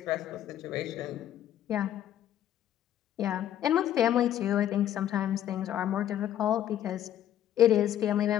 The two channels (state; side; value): quieter; right; 11.3 dB